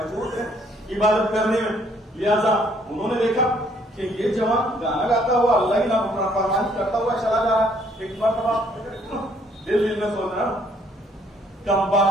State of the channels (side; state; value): both; normal; correlation 0.65